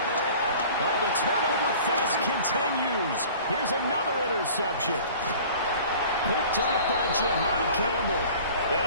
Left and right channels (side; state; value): both; inverted; correlation -0.45